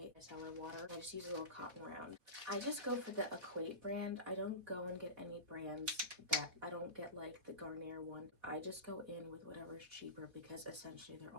micellar water. I just use a little cotton round. I just go for the Equate brand. I don't go and get any brands that I don't get like the Garnier one. I just go in with whatever's cheaper because essentially they're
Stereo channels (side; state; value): left; late; 4.1 ms